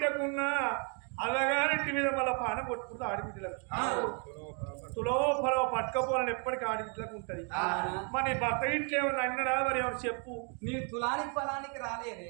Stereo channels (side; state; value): left; quieter; 38.6 dB